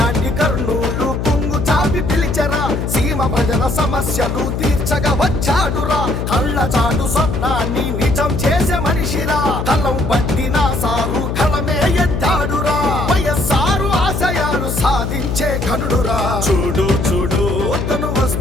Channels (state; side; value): noise; left; hum, 2 dB below the sound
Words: కర్నూలు పొంగు చాపి పిలిచరా, సీమ ప్రజల సమస్యలు తీర్చగా వచ్చాడురా. కళ్ళ చాటు స్వప్నాన్ని నిజం చేసే మనిషిరా, కలం పట్టిన సారు కలమే ఎత్తాడురా. వైఎస్ఆర్ ఆశయాలు సాధించే ఘనుడురా. చూడు చూడు తను